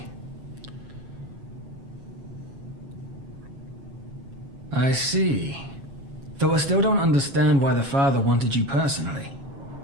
I see. Though I still don't understand why the father wanted you personally.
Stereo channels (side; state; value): left; late; 7.3 ms